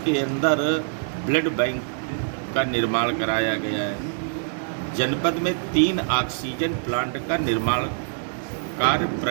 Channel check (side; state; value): left; silent; 59 dB below the other